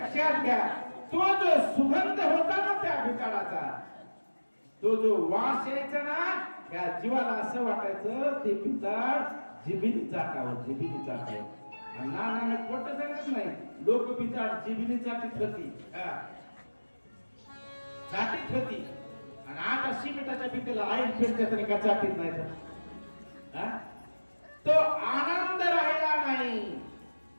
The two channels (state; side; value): inverted; both; correlation -1.00